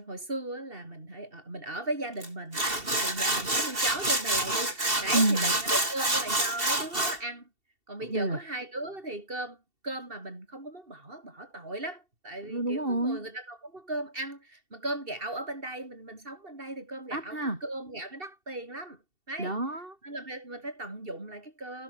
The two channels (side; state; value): left; late; 2.7 ms